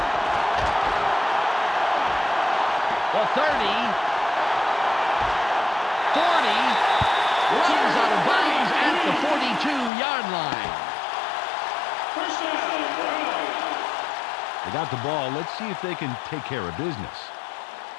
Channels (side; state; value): right; drops out; at 9.9 s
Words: The 30. 40. Runs out of bounds at the 42-yard line. First down, Browns. They got the ball. Let's see if they can take care of business.